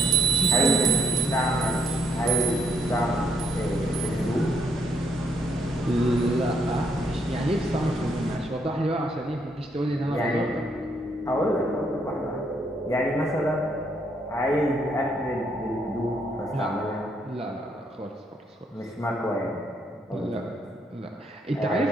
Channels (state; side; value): normal; both; correlation 0.71